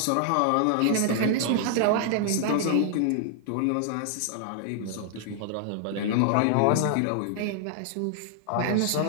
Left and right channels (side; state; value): both; different; correlation 0.00